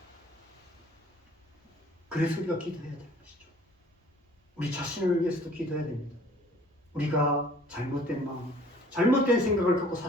그래서 우리가 기도해야 되는 것이죠. 우리 자신을 위해서도 기도해야 됩니다. 우리가 잘못된 마음, 잘못된 생각을 갖고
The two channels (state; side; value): normal; both; correlation 0.53